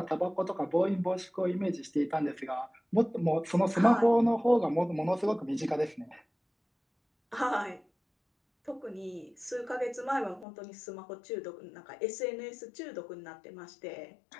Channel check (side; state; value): right; drops out; at 10.5 s